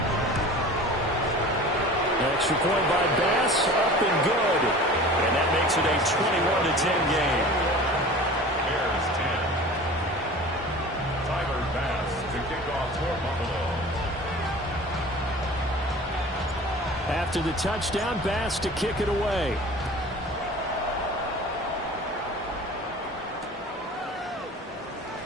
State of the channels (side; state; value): both; normal; correlation 0.40